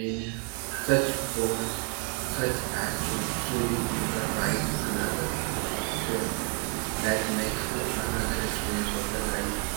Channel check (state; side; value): quieter; left; 34.5 dB